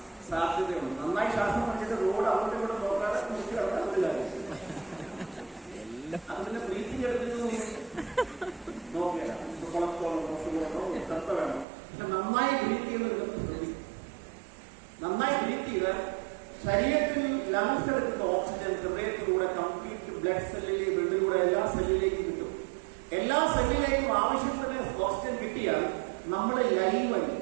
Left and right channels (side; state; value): left; drops out; at 11.7 s